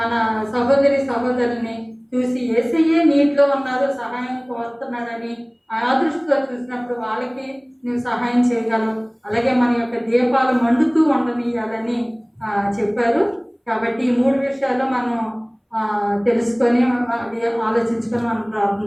సహోదరుల్ని చూసి యేసయ్యే నీటిలో ఉన్నారు, సహాయం కోరుతున్నాడని ఆ దృష్టితో చూసినప్పుడు వాళ్ళకి నువ్వు సహాయం చేయగలవు. అలాగే మన యొక్క దీపాలు మండుతూ ఉండనియాలని చెప్పారు. కాబట్టి ఈ 3 విషయాలు మనం తెలుసుకొని అది ఆలోచించుకొని మనం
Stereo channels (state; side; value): identical; both; correlation 1.00